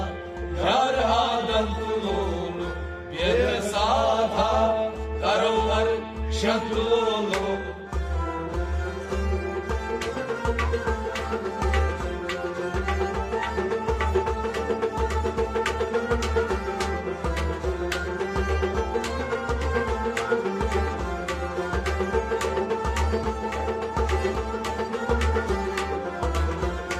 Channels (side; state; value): both; identical; correlation 1.00